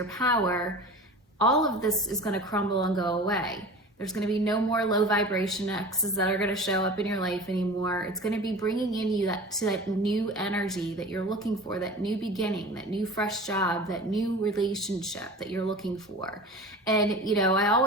power, all of this is going to crumble and go away. There's going to be no more low vibration exes that are going to show up in your life anymore. It's going to be bringing in you to that new energy that you're looking for, that new beginning, that new fresh job, that new relationship that you're looking for. And, I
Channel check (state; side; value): normal; both; correlation 0.36